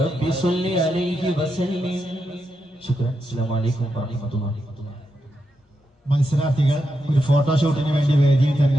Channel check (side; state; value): both; normal; correlation 0.85